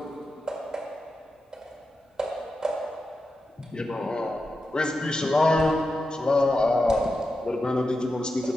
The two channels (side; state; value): both; normal; correlation 0.89